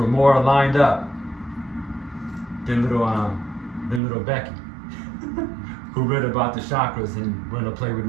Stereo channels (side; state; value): left; drops out; at 4.0 s